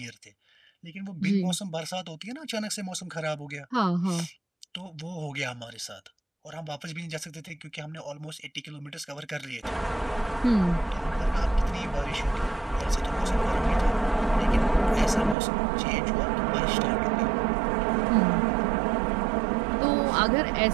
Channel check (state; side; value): drops out; left; at 15.4 s